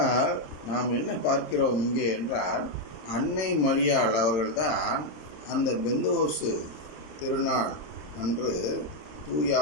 நாம் என்ன பார்க்கிறோம் இங்கே என்றால், அன்னை மரியாள் அவர்கள்தான் அந்த பெந்தோசு திருநாள் அன்று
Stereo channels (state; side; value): late; right; 27 ms